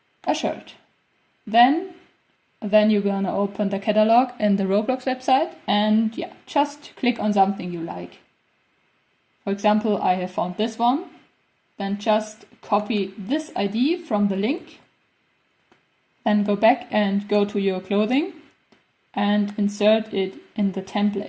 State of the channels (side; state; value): both; identical; correlation 1.00